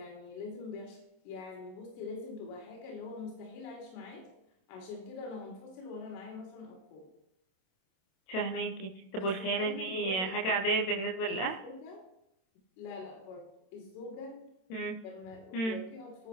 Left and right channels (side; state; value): right; late; 27 ms